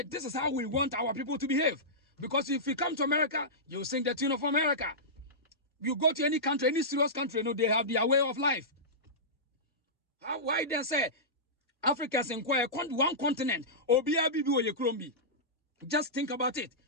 this is how we want our people to behave. Because if you come to America, you sing the tune of America. You go to any country, any serious country, they have their way of life. Why then say Africa's inquire one continent? Just think about it.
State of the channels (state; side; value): normal; both; correlation -0.15